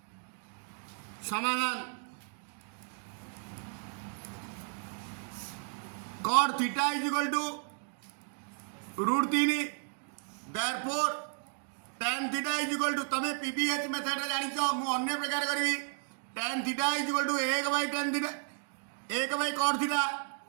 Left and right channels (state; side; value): silent; left; 55 dB below the other